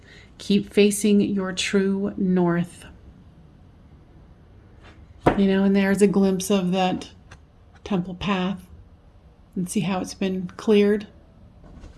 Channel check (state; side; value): identical; both; correlation 1.00